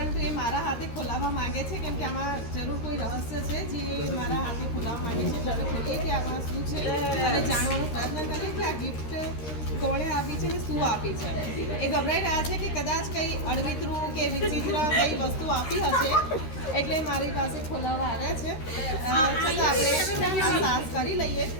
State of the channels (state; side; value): late; right; 13 ms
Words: એ મારા હાથે ખોલાવવા માંગે છે કેમ કે આમાં જરૂર કોઈ રહસ્ય છે જે મારા હાથે ખોલાવવા માંગે છે. એટલે ખોલીએ કે આમાં શું છે અને જાણવાનો પ્રયત્ન કરીએ કે આ ગિફ્ટ કોણે આપી છે ને શું આપી છે. એ ગભરાઈ રહ્યા છે કે કદાચ કંઈ અડવિતરું કે વિચિત્ર કઈ વસ્તુ આપી હશે એટલે મારી પાસે ખોલાવવા આવ્યા છે. છતાં આપણે આ સાહસ કરી લઈએ.